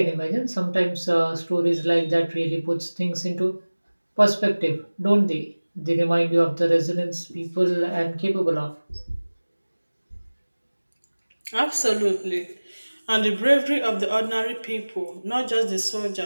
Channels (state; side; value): inverted; both; correlation -1.00